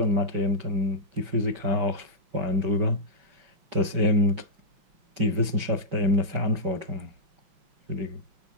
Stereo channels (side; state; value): left; late; 5.3 ms